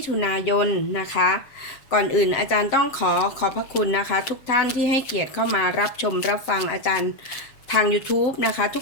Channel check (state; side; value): late; right; 7.3 ms